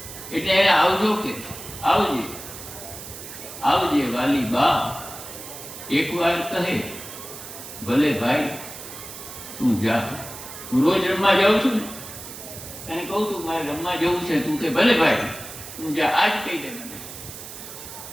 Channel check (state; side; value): noise; right; hiss, 12 dB below the sound